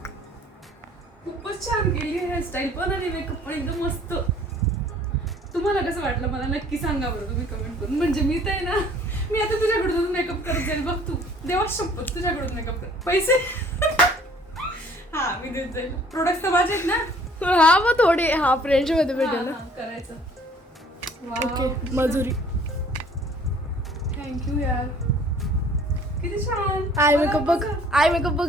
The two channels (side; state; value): both; normal; correlation 0.55